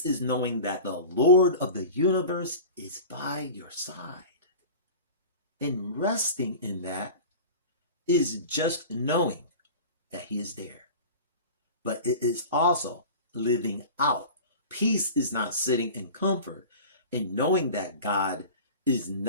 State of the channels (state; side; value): inverted; both; correlation -0.35